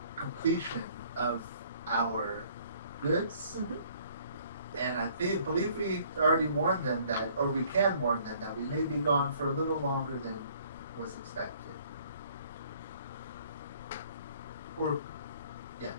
completion of our goods. Mhm. And I believe we already warned them that, or we can warn them that we may be gone for a little longer than was expected. Or,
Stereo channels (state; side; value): inverted; both; correlation -0.59